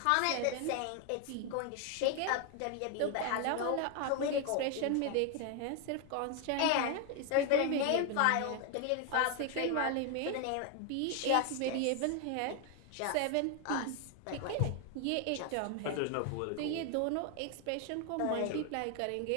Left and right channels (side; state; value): both; different; correlation 0.01